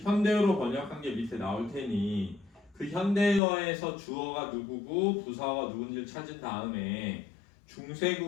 현대어로 번역한 게 밑에 나올 테니 그 현대어에서 주어가 누구고 부사어가 누군지를 찾은 다음에 중세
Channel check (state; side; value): drops out; right; at 3.4 s